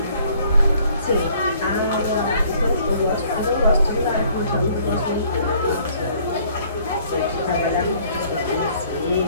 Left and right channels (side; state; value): both; inverted; correlation -0.59